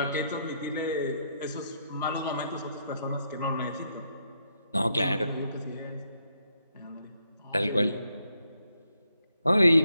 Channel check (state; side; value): inverted; both; correlation -0.78